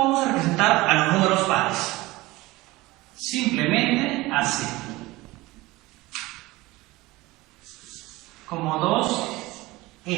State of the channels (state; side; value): quieter; left; 19.7 dB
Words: a representar a los números pares? Simplemente así. Como